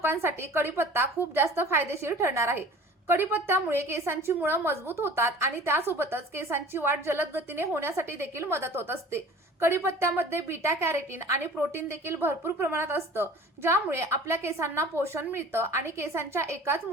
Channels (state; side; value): normal; both; correlation 0.44